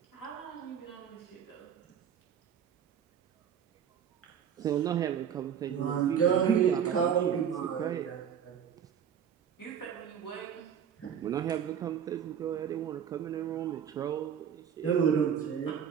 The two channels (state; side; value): quieter; left; 8.4 dB